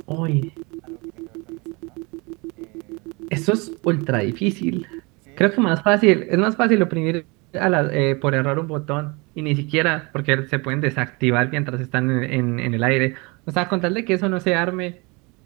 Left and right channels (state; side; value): quieter; left; 27.6 dB